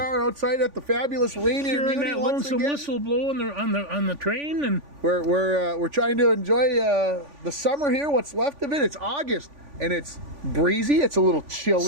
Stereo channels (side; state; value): left; late; 3.5 ms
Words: outside at the fabulous Rainier Hearing Muni that once lonesome again. whistle blow on the train, and We're trying to enjoy the summer here. What's left of it? It's August, and it's breezy. It's a little